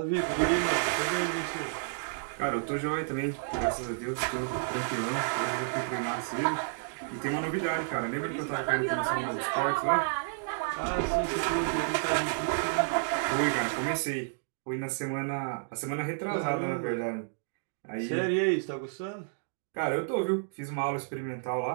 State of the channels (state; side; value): silent; left; digital silence